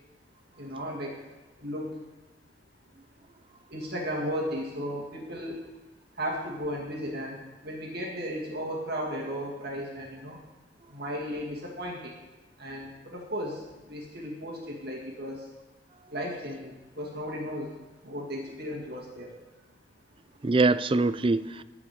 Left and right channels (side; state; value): both; normal; correlation 0.43